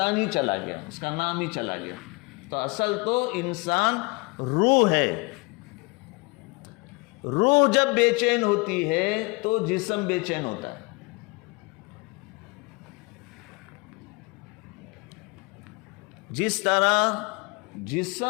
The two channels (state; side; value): quieter; right; 27.9 dB